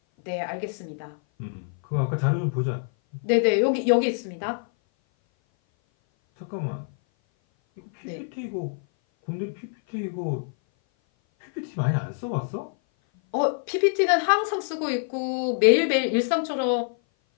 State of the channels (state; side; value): silent; right; 57 dB below the other